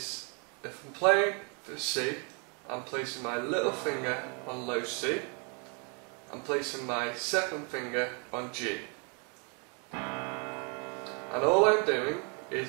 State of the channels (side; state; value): left; quieter; 36.3 dB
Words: if I'm playing for C, I'm placing my little finger on low C. I'm placing my second finger on G. And all I'm doing is